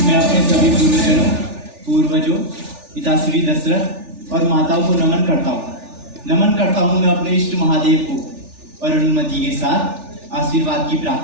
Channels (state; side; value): late; left; 3.4 ms